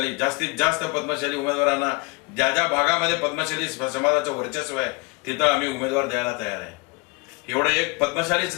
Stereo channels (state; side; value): quieter; right; 28.3 dB